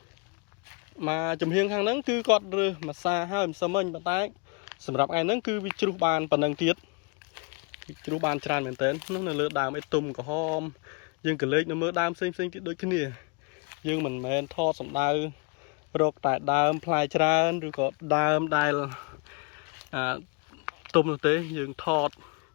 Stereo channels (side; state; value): right; quieter; 32.7 dB